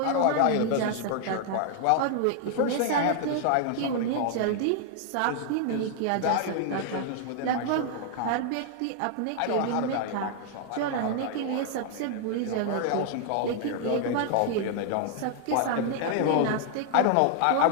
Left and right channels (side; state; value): both; different; correlation 0.00